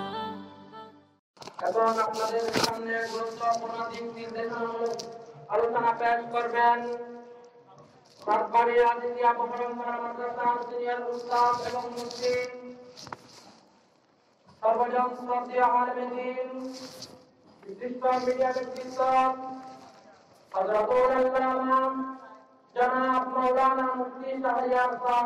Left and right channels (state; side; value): identical; both; correlation 1.00